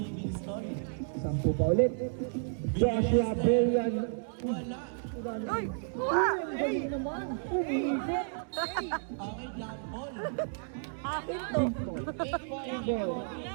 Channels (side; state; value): left; silent; digital silence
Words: 10 pa ulit. Joshua Brillian. Wala. Uy! Kuha! Galing naman. Umiikot. Okay, jump ball. Akin to. Ball.